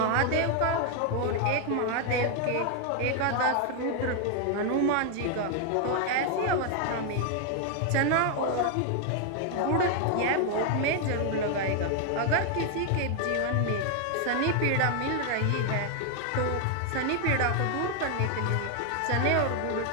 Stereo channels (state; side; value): different; both; correlation 0.00